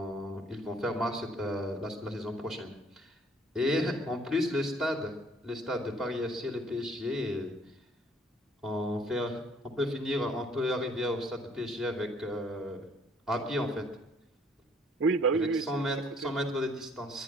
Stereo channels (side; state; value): both; normal; correlation 0.60